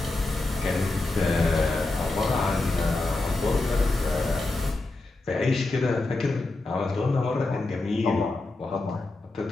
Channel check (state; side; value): quieter; right; 3.1 dB